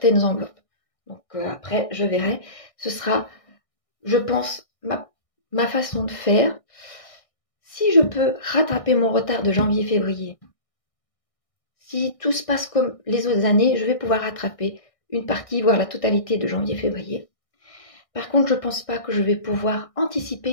enveloppes. Donc après, je verrai. Ce sera, je pense, ma façon de faire. Si je peux rattraper mon retard de janvier-février, si tout se passe comme les autres années, je vais pouvoir rattraper une partie, voire la totalité de janvier-février. Par contre, je ne pense pas que je vais pouvoir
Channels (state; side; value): late; right; 1.6 ms